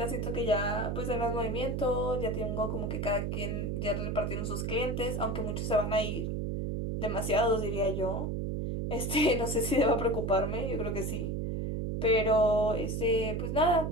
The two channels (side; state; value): right; noise; hum, 1 dB below the sound